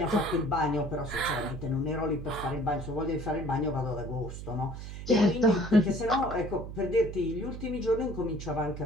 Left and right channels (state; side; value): noise; right; hum, 9 dB below the sound